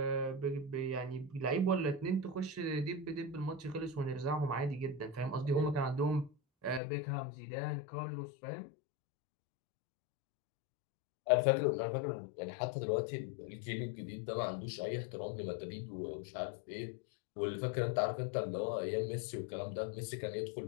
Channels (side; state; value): right; drops out; at 6.8 s